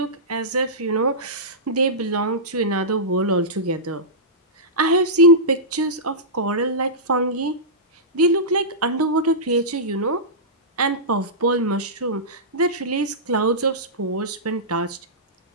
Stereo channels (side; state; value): both; normal; correlation -0.16